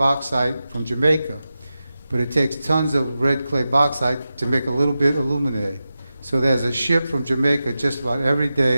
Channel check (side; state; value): both; inverted; correlation -0.92